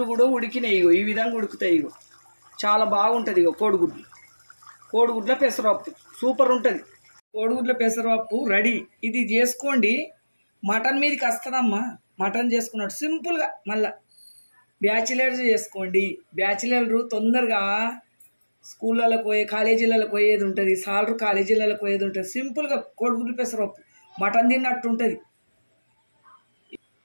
కూడా ఉడికినాయి. ఈ విధంగా ఉడుకుతాయి. చాలా బాగుంటుంది. కోడిగుడ్ల పెసరపప్పు సూపర్ ఉంటుంది. కోడిగుడ్ల పెసరపప్పు రెడీ. ఇది చేసుకోండి. మటన్ మీదకి వస్తుందమ్మా. మటన్ చేసుకున్నట్టు సింపుల్గా. మళ్ళీ బ్యాచిలర్స్ చేసుకోండి. బ్యాచిలర్లు తొందరగా స్కూళ్ళకు పోయే, కాలేజీలకు పోయేది ఉంటుంది. సాలరు కాలేజీలకు పోయేది ఉంటుంది. సింపుల్గా కోడిగుడ్లు పెసరపప్పు మటన్ తిన్నట్టు ఉంటుంది.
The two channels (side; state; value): both; inverted; correlation -1.00